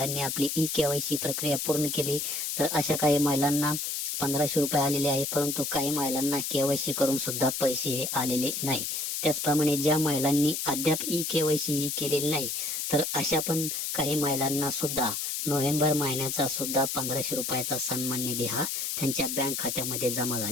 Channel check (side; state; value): left; noise; hiss, 2 dB below the sound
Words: आपली ई-केवायसी प्रक्रिया पूर्ण केली, तर अशा काही महिलांना 1500 रुपये आलेले आहे, परंतु काही महिलांना केवायसी करून सुद्धा पैसे हे आलेले नाही. त्याचप्रमाणे ज्या महिलांनी अद्याप ई-केवायसी ही केलेली नाही, तर अशा पण काही महिलांना सुद्धा नोव्हेंबर महिन्याचा सुद्धा 1500 रुपयाचा सन्मान निधी हा त्यांच्या बँक खात्यामध्ये जमा